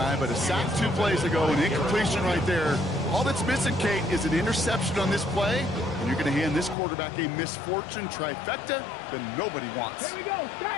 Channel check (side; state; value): right; drops out; at 6.8 s